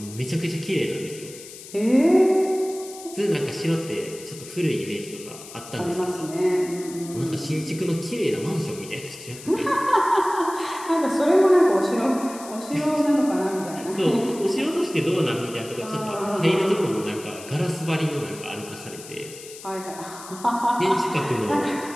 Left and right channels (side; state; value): left; noise; hiss, 15 dB below the sound